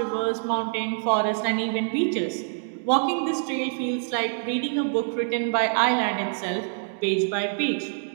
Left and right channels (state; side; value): silent; left; digital silence